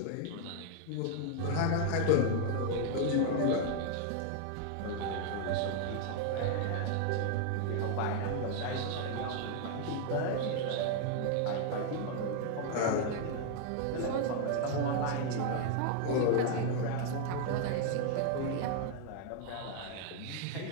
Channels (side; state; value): both; different; correlation 0.00